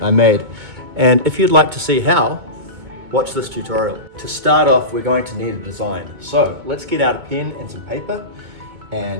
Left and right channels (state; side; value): late; left; 2.2 ms